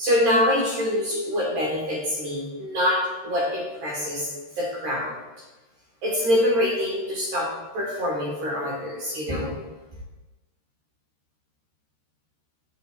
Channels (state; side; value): late; left; 13 ms